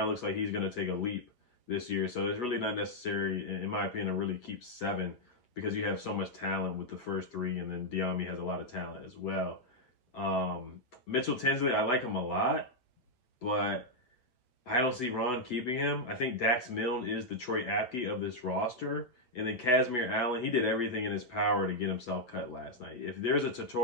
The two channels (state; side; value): late; right; 8.3 ms